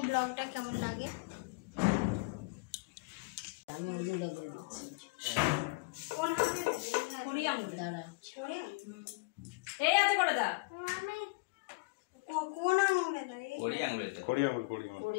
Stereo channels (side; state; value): right; quieter; 27.0 dB